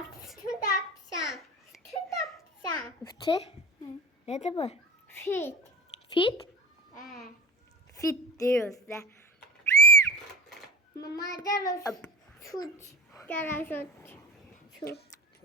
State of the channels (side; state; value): both; normal; correlation 0.36